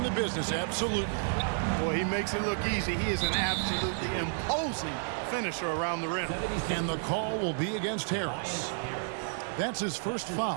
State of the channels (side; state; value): left; silent; 57 dB below the other